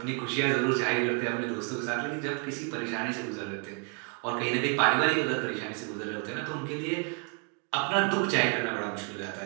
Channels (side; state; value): left; quieter; 39.5 dB